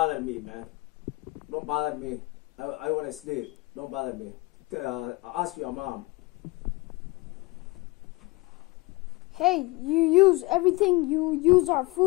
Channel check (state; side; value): quieter; right; 23.0 dB